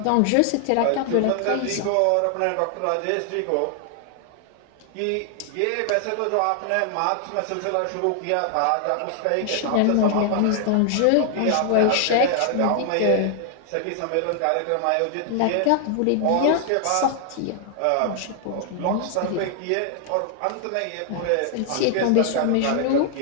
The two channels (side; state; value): both; different; correlation 0.00